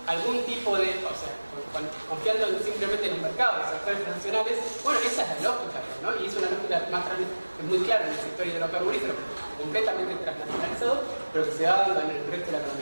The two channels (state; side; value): inverted; both; correlation -1.00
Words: algún tipo de, o sea, confiando simplemente en los mercados, en los sectores nacionales. Bueno, esa es la lógica, ¿no? Y es una lógica más muy clara en el sector hidrocarburífero, completamente transnacionalizado, pero que se va dando en el resto de la